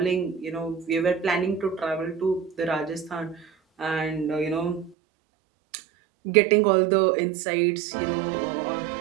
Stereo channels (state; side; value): drops out; left; at 5.0 s